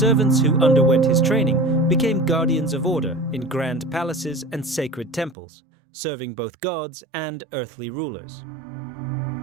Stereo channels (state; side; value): drops out; left; at 5.4 s